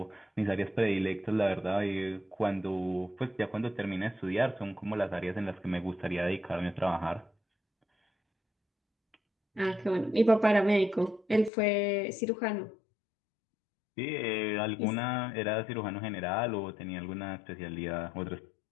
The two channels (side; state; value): right; drops out; at 11.5 s